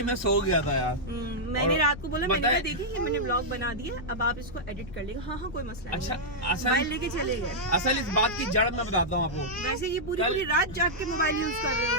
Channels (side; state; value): left; noise; rumble, 13 dB below the sound